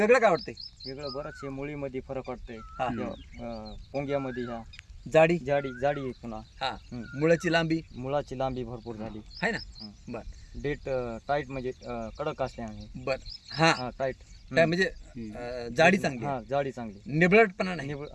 काय वाटतंय? वेगळं बरंच आहे. मुळीमध्ये फरक वाटतंय. हा. पोंग्यामध्ये ह्या जाडी जाडी आहे पुन्हा. हा, मुळाची लांबी मुळाची लांबी भरपूर झाली आहे ना. हं. बर डेट टाईट म्हणजे कडक असल्याने. बर हा हा टाईट. काय म्हणजे जाडी चांगली आहे. हा जाडी चांगली. निबळटपणा नाही,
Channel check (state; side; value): identical; both; correlation 1.00